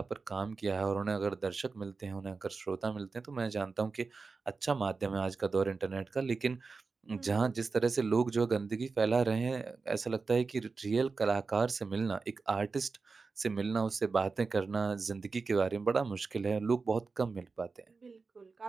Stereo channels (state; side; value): quieter; left; 4.4 dB